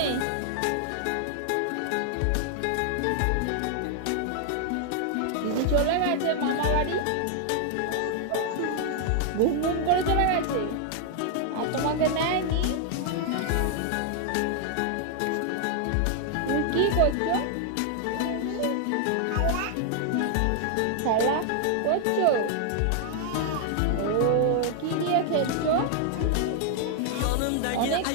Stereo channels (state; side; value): different; both; correlation 0.00